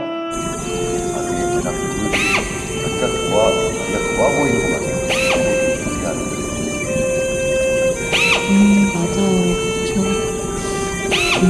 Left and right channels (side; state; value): both; identical; correlation 1.00